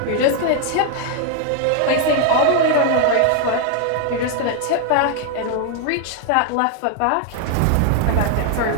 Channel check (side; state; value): both; different; correlation 0.00